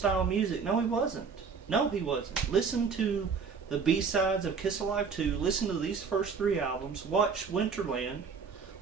music? No, he wasn't. No, he wasn't. Listen to the B-sides of Kiss Alive 2, listen to these first 3 albums, watch Winterland,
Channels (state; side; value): quieter; left; 5.6 dB